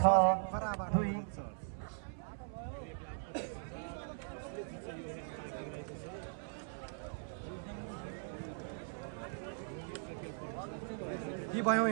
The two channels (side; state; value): left; silent; 51 dB below the other